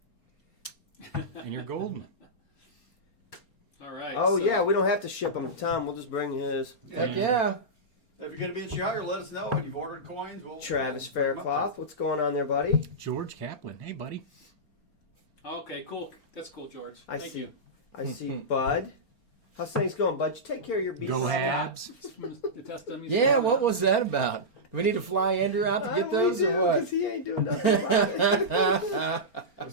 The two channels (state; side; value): late; right; 4.4 ms